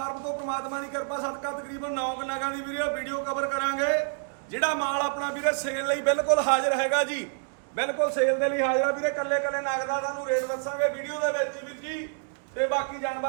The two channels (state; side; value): silent; left; digital silence